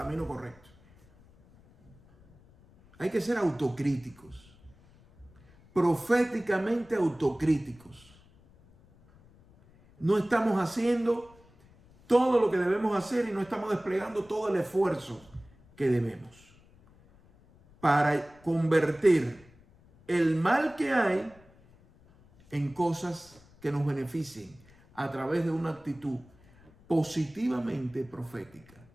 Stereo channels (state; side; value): noise; left; rumble, 27 dB below the sound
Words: correcto. Hay que ser autocríticos, proféticamente autocríticos. No estamos haciendo todo lo que debemos hacer y no estamos desplegando todo el esfuerzo que debemos para convertir el mal que hay en cosas que nos beneficien a través de una actitud positivamente profética.